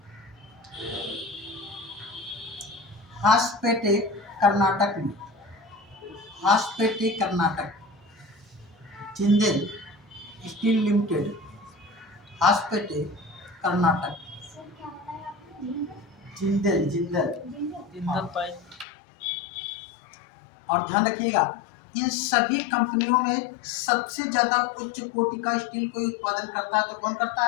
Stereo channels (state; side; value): drops out; right; at 18.9 s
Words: हासपेटे कर्नाटक में, Hosapete Karnataka. Jindal steel limited, Hosapete Karnataka. Jindal, Jindal, Jindal pipe. और ध्यान रखिएगा, इन सभी कंपनियों में सबसे ज्यादा उच्च कोटि का स्टील कोई उत्पादन करता है तो कौन करता